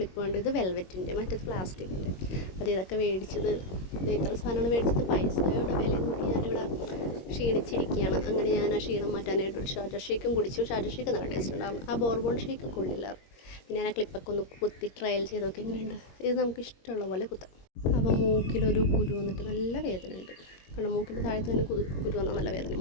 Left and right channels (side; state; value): right; late; 21 ms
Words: ഉണ്ട്. ഇത് വെൽവെറ്റിൻ്റെ, മറ്റേത് പ്ലാസ്റ്റിക്കിൻ്റെ. അത് ഇതൊക്കെ മേടിച്ചത്, ഇത്ര സാധനമാണ് മേടിച്ചത്. പൈസയുടെ വില നോക്കി ഞാനിവിടെ ക്ഷീണിച്ചിരിക്കുകയാണ്. അങ്ങനെ ഞാൻ ആ ക്ഷീണം മാറ്റാനായിട്ട് ഒരു ഷാർജ ഷേക്കും കുടിച്ചു. ഷാർജ ഷേക്ക് നല്ല ടേസ്റ്റ് ഉണ്ടായിരുന്നു. ആ ബോർബോൺ ഷേക്ക് കൊള്ളില്ലായിരുന്നു. പിന്നെ ഞാൻ ആ ക്ലിപ്പൊക്കെ ഒന്ന് കുത്തി ട്രയൽ ചെയ്തൊക്കെ എങ്ങനെയുണ്ട്. ഇത് നമുക്ക് ഇഷ്ടമുള്ള പോലെ കുത്താം. അപ്പോൾ മൂക്കിലൊരു കുരു വന്നിട്ട് നല്ല വേദനയുണ്ട്. കാരണം മൂക്കിൻ്റെ താഴത്ത് തന്നെ കുരു വന്നാൽ നല്ല വേദന,